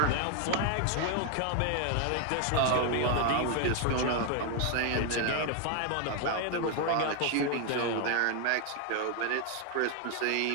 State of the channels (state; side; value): different; both; correlation 0.01